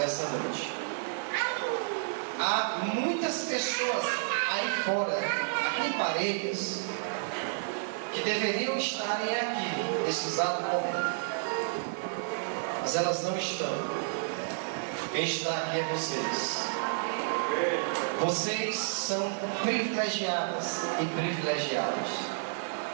noite. Há muitas pessoas aí fora, aqui em Parelhas, que deveriam estarem aqui nesse exato momento, mas elas não estão. Quem está aqui é vocês. Vocês são privilegiadas e privilegiados.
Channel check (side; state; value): left; silent; digital silence